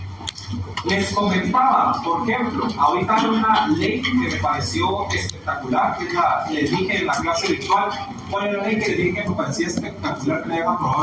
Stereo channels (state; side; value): identical; both; correlation 1.00